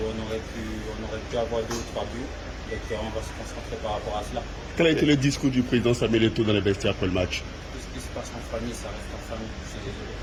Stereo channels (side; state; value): both; identical; correlation 1.00